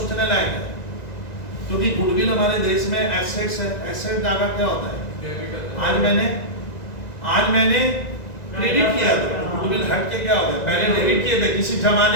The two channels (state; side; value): late; right; 2.0 ms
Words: लायक है, क्योंकि गुडविल हमारे देश में एसेट्स है। एसेट डाका क्या होता है? आज मैंने क्रेडिट किया था, गुडविल हट के क्या हो गया? पहले डेबिट किए थे किसी